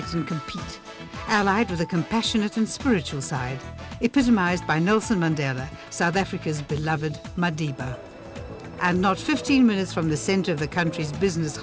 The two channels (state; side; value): identical; both; correlation 1.00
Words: and compete, allied with a compassionate and spiritual side, epitomized by Nelson Mandela, South Africa's beloved Madiba. And not 15 minutes from the center of the country's business